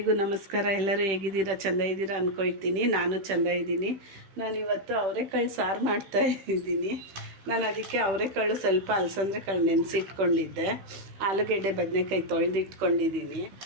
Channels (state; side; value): late; left; 15 ms